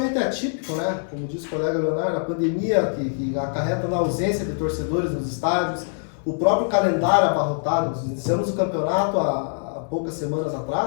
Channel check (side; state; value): right; silent; digital silence